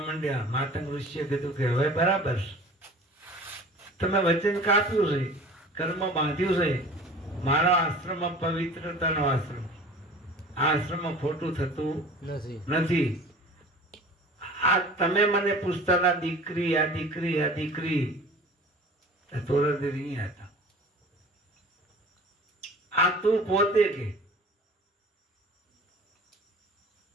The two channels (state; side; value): normal; both; correlation 0.43